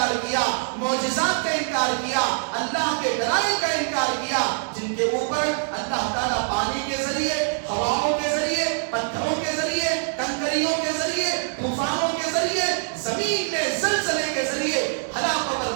کیا، معجزات کا انکار کیا، اللہ کے دلائل کا انکار کیا، جن کے اوپر اللہ تعالیٰ پانی کے ذریعے، ہواؤں کے ذریعے، پتھروں کے ذریعے، کنکریوں کے ذریعے، طوفانوں کے ذریعے، زمین میں زلزلے کے ذریعے ہلاک و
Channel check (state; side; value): silent; left; digital silence